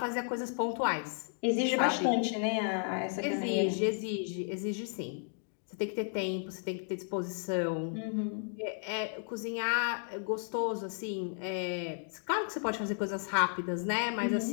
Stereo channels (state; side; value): silent; right; 55 dB below the other